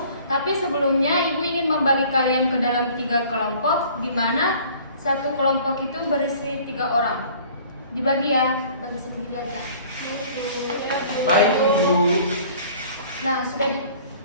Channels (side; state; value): both; inverted; correlation -0.50